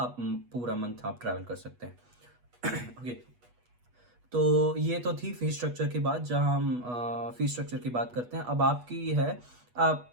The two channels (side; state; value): left; late; 8.2 ms